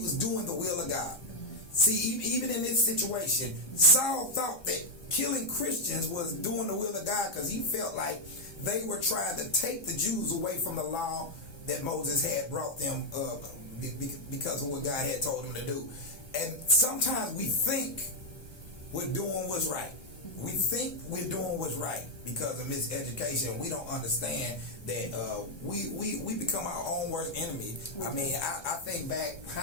doing the will of God? See, even in this situation, Saul thought that killing Christians was doing the will of God because he felt like they were trying to take the Jews away from the law that Moses had brought them because of what God had told them to do. And sometimes we think we're doing what's right. We think we're doing what's right because of miseducation. We don't understand that we become our own worst enemy. I mean, I think back,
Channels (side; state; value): right; late; 1.3 ms